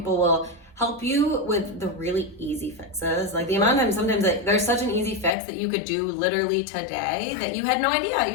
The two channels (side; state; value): right; drops out; at 5.3 s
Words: will help you with the really easy fixes. Like the amount of times sometimes there's such an easy fix that you could do literally today that you had no idea.